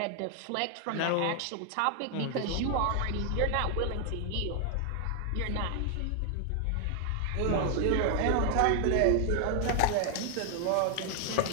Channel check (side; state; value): both; different; correlation 0.00